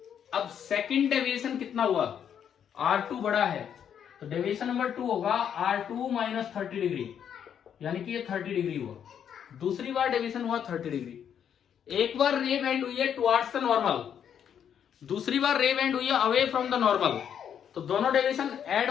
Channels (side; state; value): right; quieter; 8.6 dB